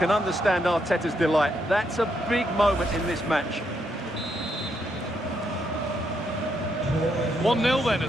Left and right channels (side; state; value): both; normal; correlation 0.78